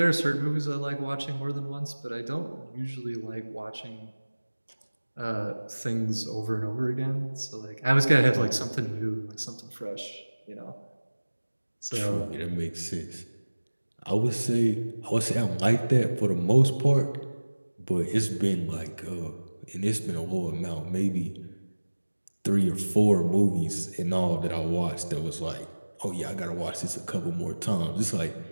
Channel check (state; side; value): inverted; both; correlation -1.00